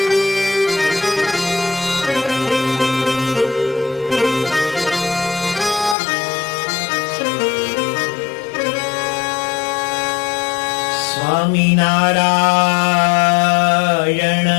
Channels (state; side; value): drops out; right; at 6.0 s